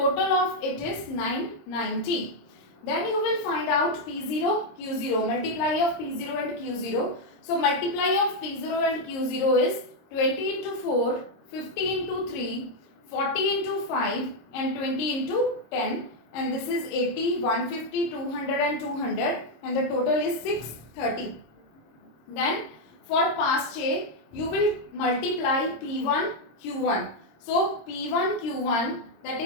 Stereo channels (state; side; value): late; right; 26 ms